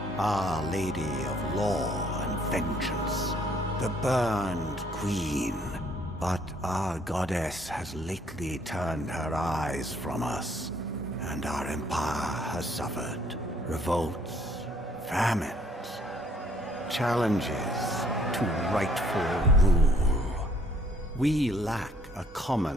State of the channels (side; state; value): both; normal; correlation 0.63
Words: Our Lady of Law and Vengeance, the Burned Queen. But our goddess has lately turned her eyes from us, and our empire has suffered revolts, famines, challenges to rightful rule. We lack a